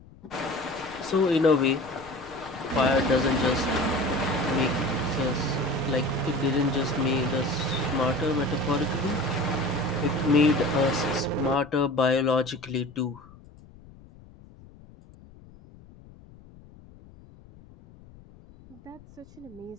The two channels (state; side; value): noise; left; rumble, 22 dB below the sound